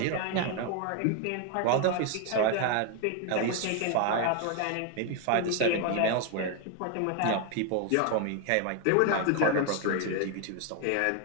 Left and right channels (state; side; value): different; both; correlation 0.01